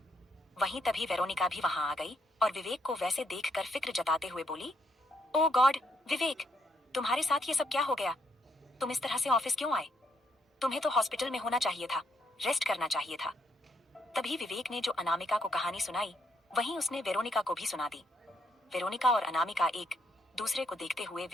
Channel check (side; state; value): both; normal; correlation 0.75